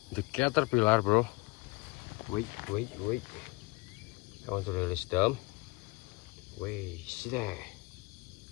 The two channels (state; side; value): quieter; right; 24.1 dB